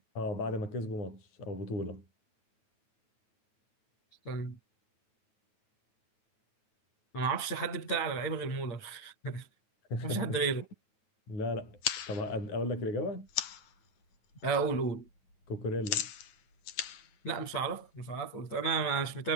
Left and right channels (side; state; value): right; late; 9.2 ms